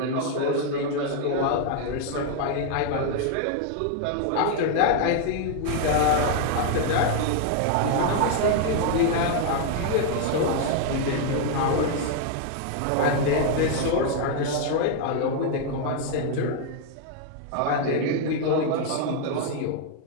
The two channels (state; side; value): different; both; correlation 0.00